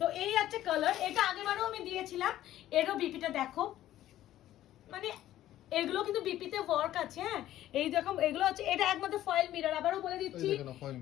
তো এই আছে কালার, এটা আগেবারও আমি দিয়েছিলাম। এরও বিপিটা দেখো, মানে এগুলো কিন্তু বিপিতে ওয়ার্ক আছে। হ্যাঁ এই দেখো এগুলো হচ্ছে, এটা একমাত্র ফয়েল মিরর। আবারও বলে দিচ্ছি,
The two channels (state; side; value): quieter; right; 13.4 dB